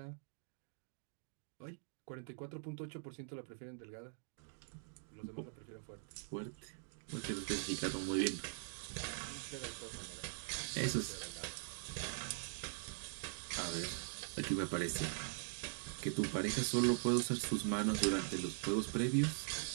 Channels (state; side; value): silent; left; digital silence